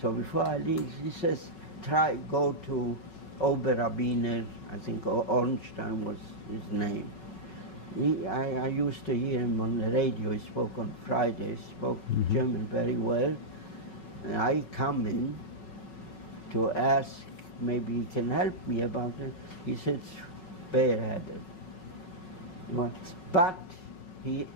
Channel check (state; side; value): late; right; 5.4 ms